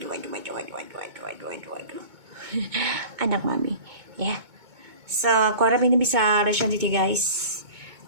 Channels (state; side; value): late; left; 2.2 ms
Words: Aduh. Anak mami ya. So aku harap ini bisa respon you guys,